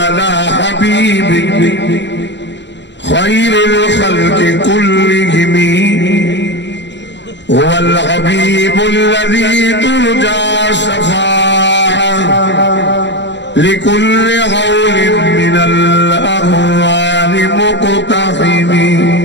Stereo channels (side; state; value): right; late; 0.52 ms